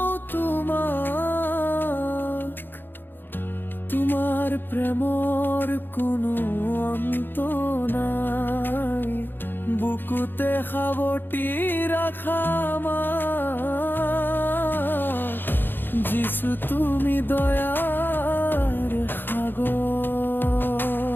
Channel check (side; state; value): right; late; 0.097 ms